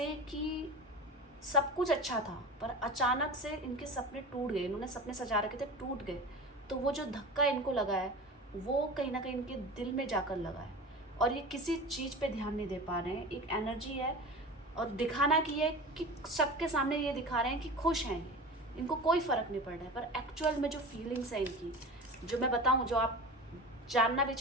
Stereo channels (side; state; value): both; normal; correlation 0.32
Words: कि सब कुछ अच्छा था, पर अचानक से इनके सपने टूट गए, इन्होंने सपने सजा रखे थे, टूट गए। तो वो जो धक्का इनको लगा है वो कहीं ना कहीं इनके दिल में जाकर लगा है, और ये किसी चीज़ पे ध्यान नहीं दे पा रहे हैं। एक एनर्जी है, और दिखाना की है कि सबके सामने ये दिखा रहे हैं कि खुश हैं ये, इनको कोई फ़र्क नहीं पड़ रहा है, पर एक्चुअल में जो फीलिंग्स हैं इनकी, जो मैं बताऊं, जो आप जानना भी